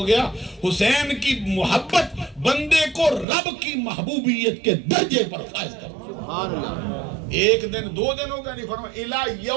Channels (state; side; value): drops out; left; at 3.2 s